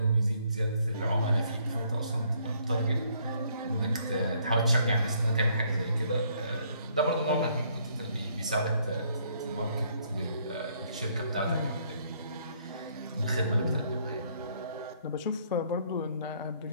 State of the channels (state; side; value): inverted; both; correlation -0.67